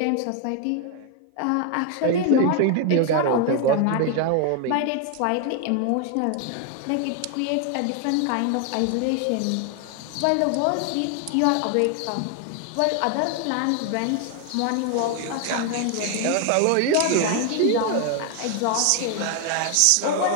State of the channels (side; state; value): both; different; correlation 0.01